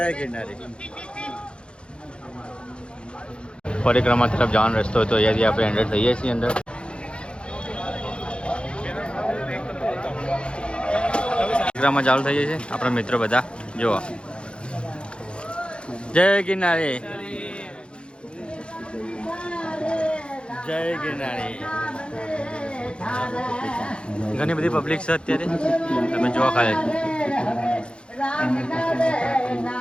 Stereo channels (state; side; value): late; right; 0.056 ms